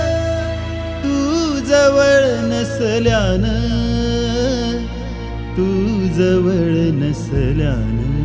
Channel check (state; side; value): identical; both; correlation 1.00